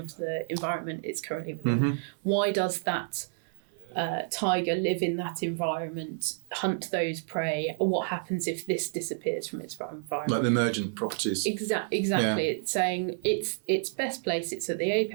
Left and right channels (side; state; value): left; silent; digital silence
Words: the environment it's currently within? Why does that tiger live in that environment, hunt those prey. What happens if this disappears from its environment? Like the emergent properties. Exactly. Yeah. It's saying it's best place. It's at the